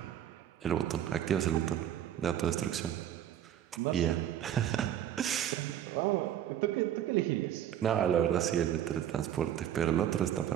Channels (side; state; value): left; quieter; 10.7 dB